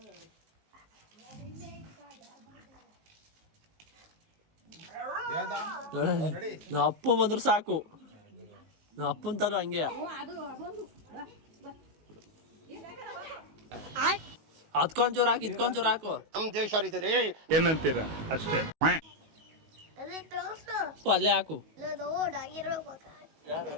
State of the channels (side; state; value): left; late; 19 ms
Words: ನಾ ಅಪ್ಪ ಬಂದ್ರೆ ಸಾಕು. ನಾ ಅಪ್ಪನ ತರ ಹಂಗೆ ಹತ್ಕೊಂಚೂರು ಹಾಕಿ ಇತ್ಕೊಂಚೂರು ಹಾಕು. ನಮ್ ದೇಶ ಏನಂತೀರ ಅಷ್ಟೇ. ಅಲ್ಲೇ ಹಾಕು.